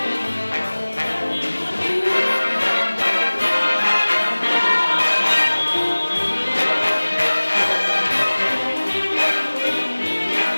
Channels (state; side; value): inverted; both; correlation -1.00